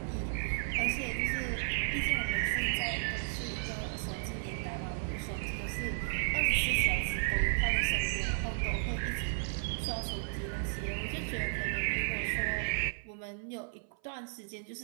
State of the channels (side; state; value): left; silent; 55 dB below the other